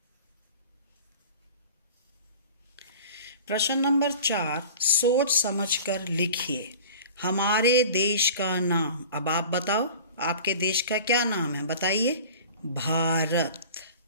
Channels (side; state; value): both; inverted; correlation -0.40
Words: प्रश्न नंबर 4, सोच समझकर लिखिए। हमारे देश का नाम। अब आप बताओ, आपके देश का क्या नाम है? बताइए। भारत।